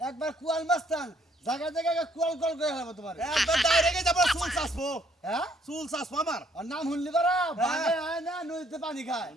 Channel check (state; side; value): normal; both; correlation 0.66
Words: একবার কুয়াল মাস্তান জায়গা জায়গা কুয়াল কল করে হলাম তোমার একবার ডাইরেক্ট যাব চুল চাসবো হ্যাঁ চুল চাসবো আমার আর নাম শুনলি পারা বাগে হয় না নদীতে পানি খায়